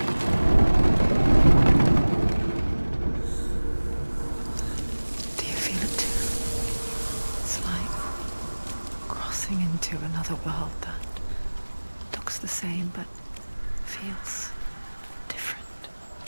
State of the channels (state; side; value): inverted; both; correlation -1.00